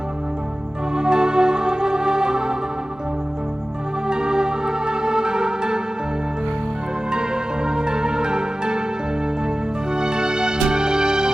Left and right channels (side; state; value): both; normal; correlation 0.96